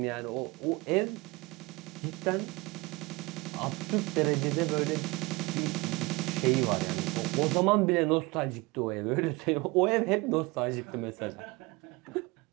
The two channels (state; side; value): quieter; left; 24.0 dB